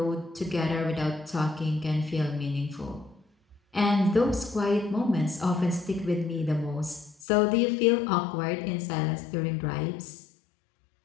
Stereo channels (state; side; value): drops out; right; at 7.2 s